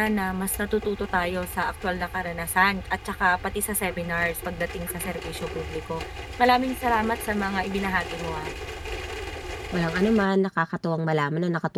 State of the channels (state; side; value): identical; both; correlation 1.00